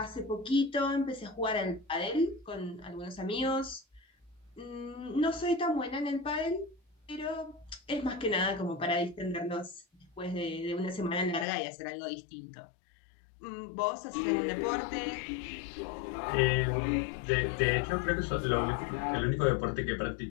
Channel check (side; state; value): right; drops out; at 11.5 s